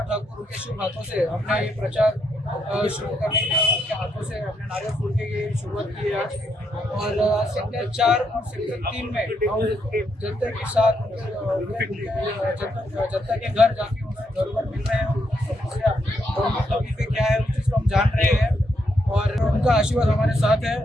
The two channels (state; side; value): normal; both; correlation 0.78